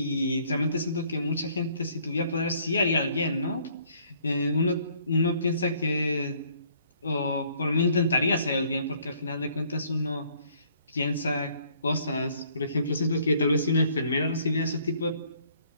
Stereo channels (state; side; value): inverted; both; correlation -0.63